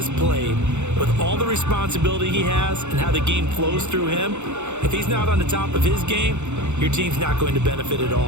played, with all the responsibility he has and how the game flows through him, if he's not on the top of his game, your team's not going to benefit at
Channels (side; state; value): left; late; 0.83 ms